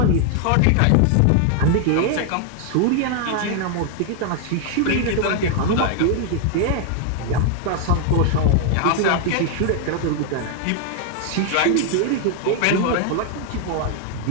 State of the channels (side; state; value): both; different; correlation 0.00